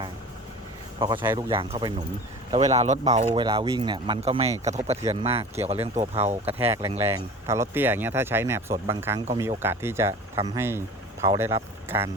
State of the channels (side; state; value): both; normal; correlation 0.38